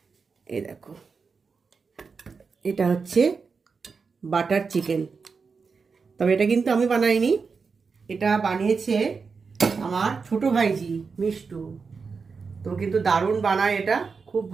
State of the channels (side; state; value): left; quieter; 5.1 dB